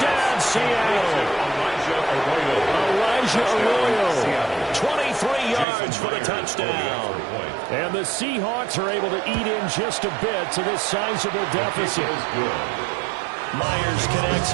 Seattle. Elijah Arroyo. 23 yards for the touchdown. And the Seahawks are able to eat in just a bit to this sizable deficit. Myers connects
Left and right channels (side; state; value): left; drops out; at 5.7 s